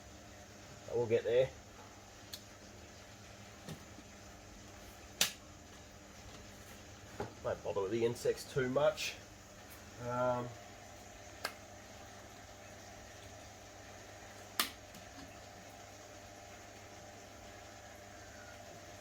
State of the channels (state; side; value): identical; both; correlation 1.00